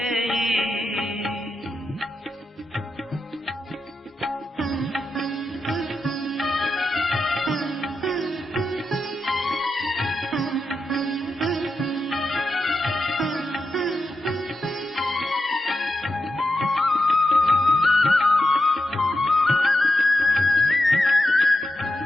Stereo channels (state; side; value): normal; both; correlation 0.87